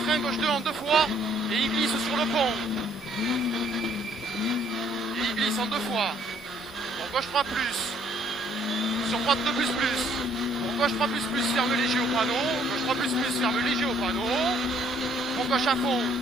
frein, gauche 2 en 2 fois. Et il glisse sur le pont. Et il glisse en 2 fois. Pour gauche 3 plus. Sur droite 2 plus plus. Pour gauche 3 plus plus, ferme léger au panneau. Gauche 3 plus plus, ferme léger au panneau. Pour gauche à fond.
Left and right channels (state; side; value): normal; both; correlation 0.64